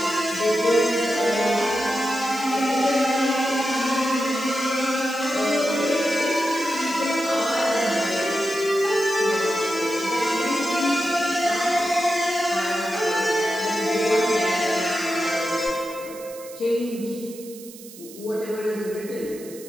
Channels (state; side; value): noise; right; hiss, 18 dB below the sound